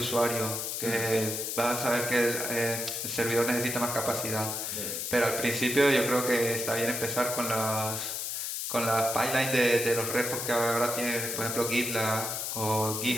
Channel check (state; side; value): noise; left; hiss, 3 dB below the sound